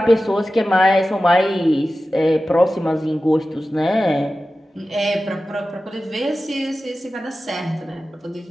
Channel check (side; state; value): both; normal; correlation 0.94